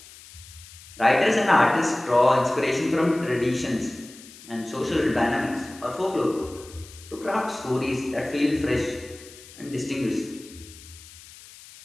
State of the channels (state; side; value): noise; left; hiss, 19 dB below the sound